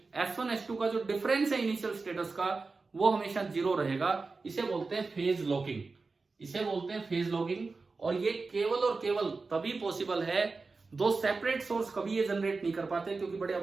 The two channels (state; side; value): quieter; left; 4.0 dB